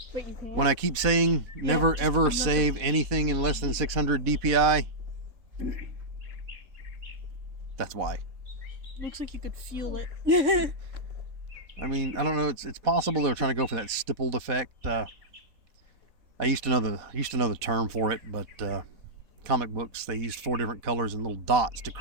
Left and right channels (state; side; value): late; left; 4.1 ms